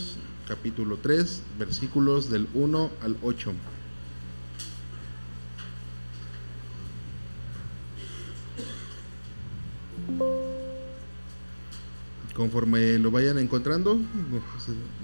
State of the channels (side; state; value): both; inverted; correlation -1.00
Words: capítulo 3, versículos del 1 al 8. Conforme lo vayan encontrando,